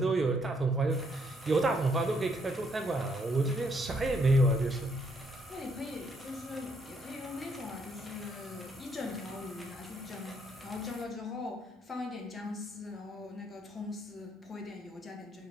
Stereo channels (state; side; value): normal; both; correlation 0.71